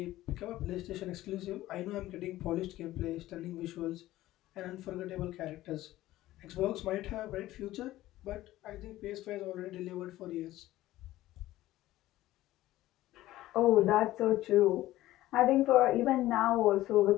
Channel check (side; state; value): right; quieter; 15.7 dB